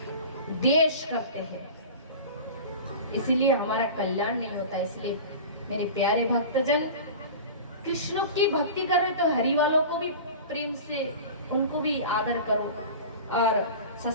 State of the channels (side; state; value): both; inverted; correlation -0.35